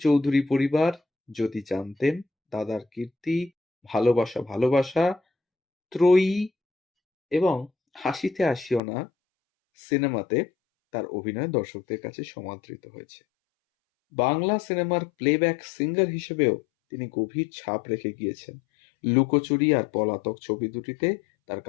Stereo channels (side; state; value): right; drops out; at 8.8 s